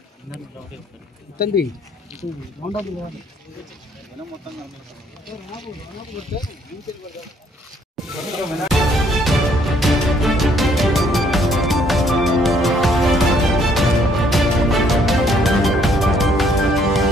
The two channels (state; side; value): normal; both; correlation 0.66